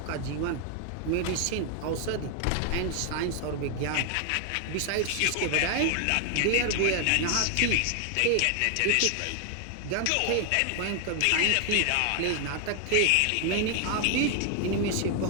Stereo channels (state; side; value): different; both; correlation 0.00